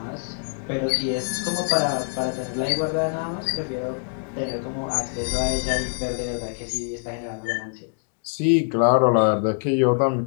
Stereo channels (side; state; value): right; silent; digital silence